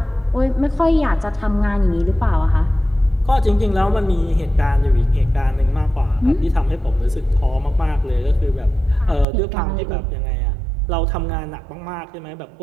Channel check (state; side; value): drops out; left; at 9.2 s